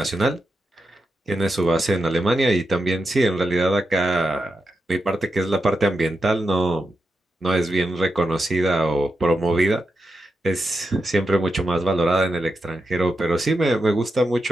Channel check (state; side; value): normal; both; correlation 0.87